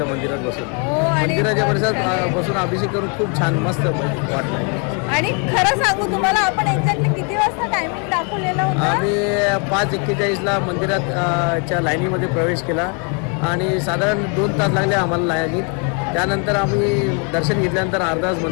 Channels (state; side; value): quieter; right; 37.1 dB